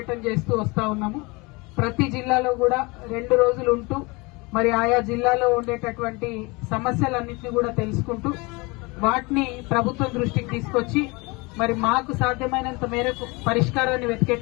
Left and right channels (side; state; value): right; quieter; 26.2 dB